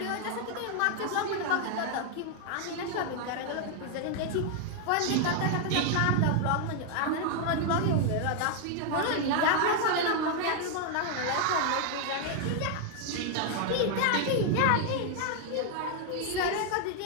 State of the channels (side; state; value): both; different; correlation 0.00